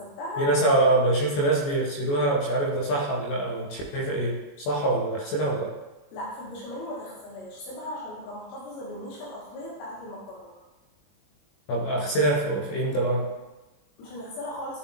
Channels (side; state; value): right; late; 21 ms